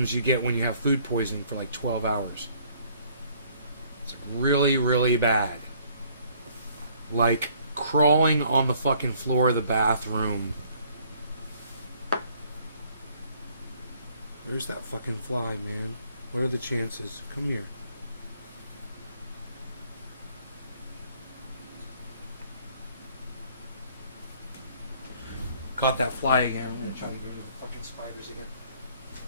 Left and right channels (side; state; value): both; inverted; correlation -0.61